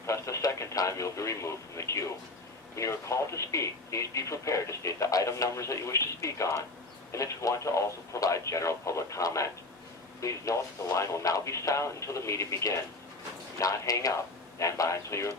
press the second time, you'll be removed from the queue. When you are called to speak, please be prepared to state the item numbers that you wish to speak on, and if you want to also provide general public comment. Please note that the line will now be silent until the meeting begins. Do not hang up. Stand by until you are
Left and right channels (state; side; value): quieter; right; 3.0 dB